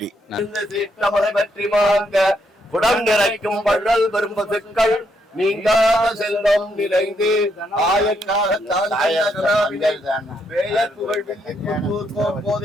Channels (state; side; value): normal; both; correlation 0.76